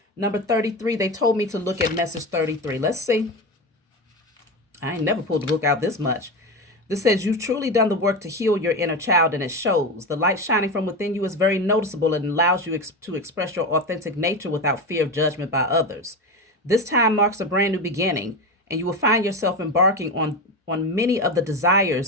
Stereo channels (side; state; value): both; normal; correlation 0.20